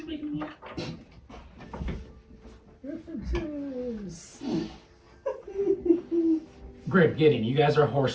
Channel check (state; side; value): identical; both; correlation 1.00